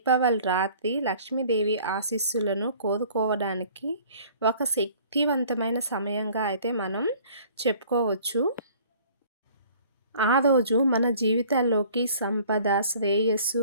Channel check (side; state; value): both; inverted; correlation -0.52